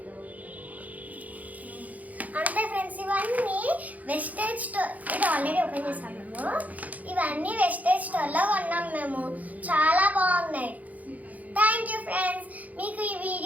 అంతే ఫ్రెండ్స్, ఇవన్నీ వెస్టేజ్ స్టోర్. ఇది ఆల్రెడీ ఓపెన్ చేసాం మేము. ఇవన్నీ వెస్టేజ్ స్టోర్లో కొన్నాం మేము. చాలా బాగున్నాయి. Thank you friends. మీకు ఈ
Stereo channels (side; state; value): left; late; 0.077 ms